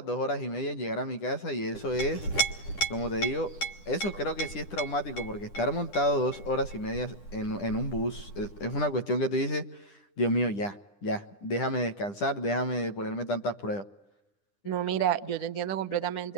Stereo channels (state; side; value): late; right; 10 ms